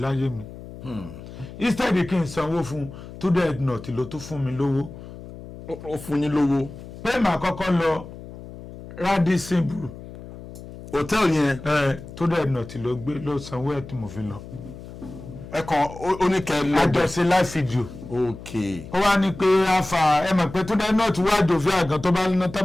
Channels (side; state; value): left; noise; hum, 14 dB below the sound